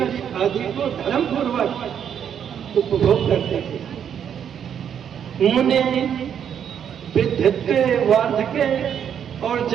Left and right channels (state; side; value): quieter; left; 8.5 dB